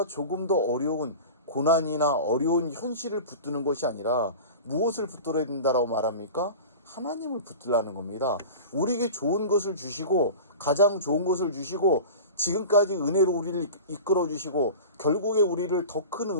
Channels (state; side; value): inverted; both; correlation -0.34